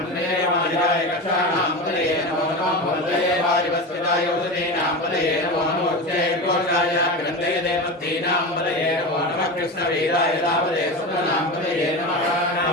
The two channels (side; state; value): both; normal; correlation 0.24